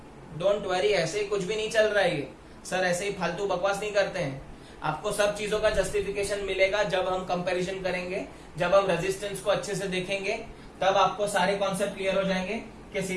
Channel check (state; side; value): identical; both; correlation 1.00